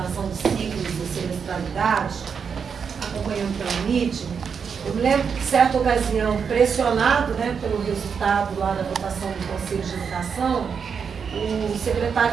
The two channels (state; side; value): quieter; left; 6.4 dB